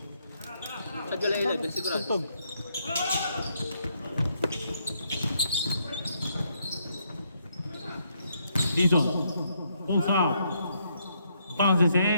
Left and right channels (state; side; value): inverted; both; correlation -0.74